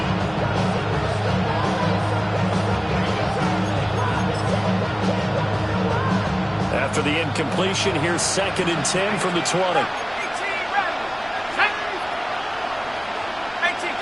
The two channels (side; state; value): left; noise; rumble, 23 dB below the sound